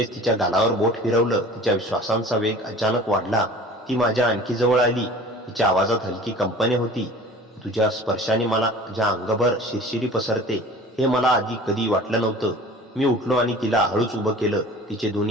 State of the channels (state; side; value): normal; both; correlation 0.43